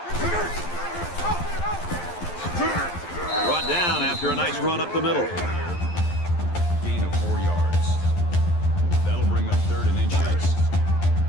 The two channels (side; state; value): right; late; 11 ms